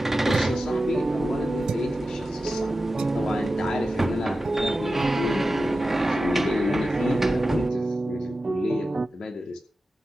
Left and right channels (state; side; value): normal; both; correlation 0.93